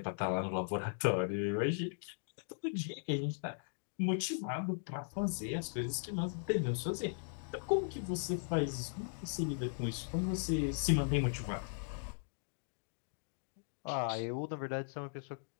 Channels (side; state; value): right; silent; digital silence